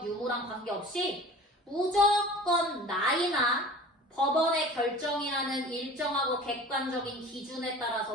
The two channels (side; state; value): both; normal; correlation 0.42